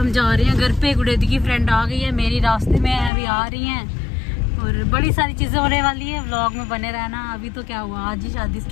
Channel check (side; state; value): right; drops out; at 3.1 s